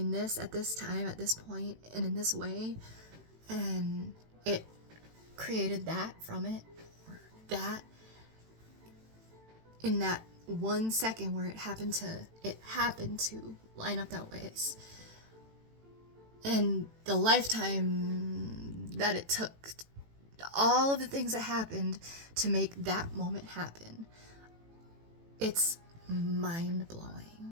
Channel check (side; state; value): left; late; 18 ms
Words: this at this time, at this point, and in this way, and it created that from it, or that, in that 1 second where it happened to line up that way. And the lifetime that it took, all of the things that happened to make that moment happen, it's